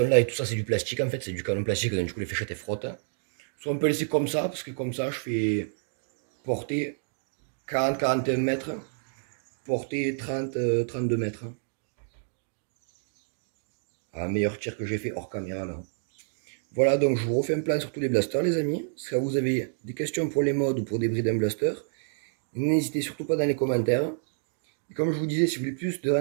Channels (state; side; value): silent; left; digital silence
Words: là et tout ça c'est du plastique en fait, c'est du canon plastique, donc du coup les fléchettes elles frottent. Soit on peut laisser comme ça, parce que comme ça je fais portée 40-41 mètres, portée 30-32 mètres. Un meilleur tir que j'ai fait hors caméra là. Voilà, donc je vous refais un plan sur tous les blasters les amis. Si vous avez des questions pour les modes ou pour des brides en blaster, n'hésitez surtout pas dans les commentaires. Et comme je vous disais, si vous voulez plus de